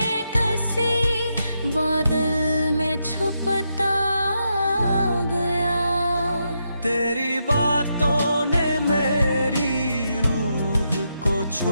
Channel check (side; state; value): both; inverted; correlation -0.82